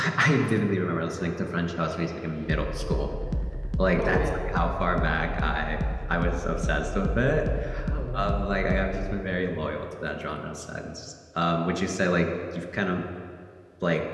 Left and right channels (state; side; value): identical; both; correlation 1.00